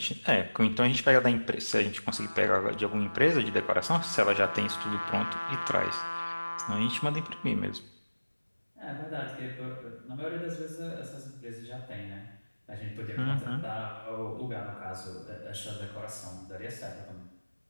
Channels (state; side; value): inverted; both; correlation -1.00